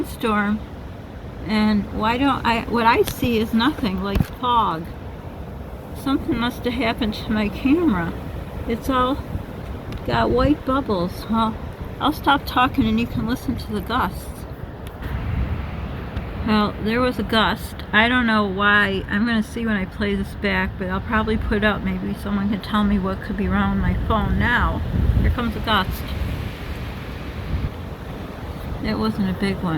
and what I see is nothing, like fog. Something must have happened to my camera. It's all got white bubbles. Well, I'll stop talking and you can listen to the gusts. Well, there was a gust. I don't know why. I'm going to see when I play this back, but I'll probably put up. Maybe someone can tell me what could be wrong with my phone now. Here comes a gust. It wasn't a big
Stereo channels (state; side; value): identical; both; correlation 1.00